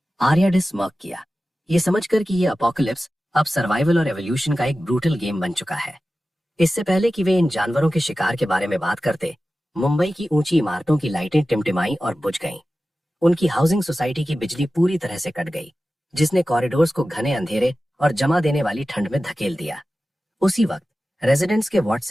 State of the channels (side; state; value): both; normal; correlation 0.95